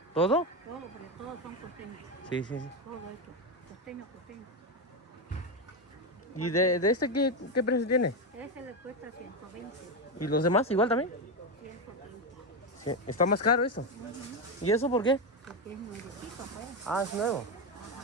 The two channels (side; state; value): both; normal; correlation 0.11